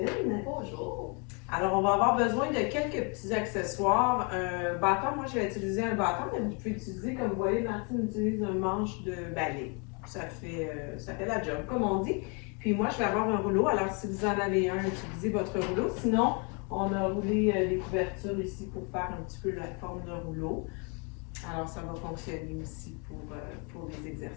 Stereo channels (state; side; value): quieter; right; 34.5 dB